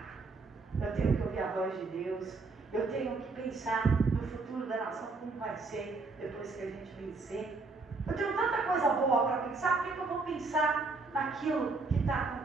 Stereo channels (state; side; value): quieter; left; 3.9 dB